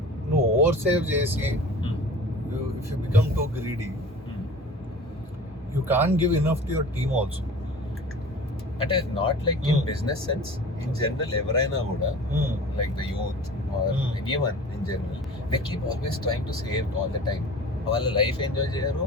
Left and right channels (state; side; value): normal; both; correlation 0.41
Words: నువ్వు ఓవర్ సేవ్ చేసి if you become too greedy, you can't give enough to your team also. అంటే not like in business sense, in general ఎవరైనా కూడా like the youth or anyone in general, they keep always trying to save all the time. వాళ్ళ life enjoy చేయరు,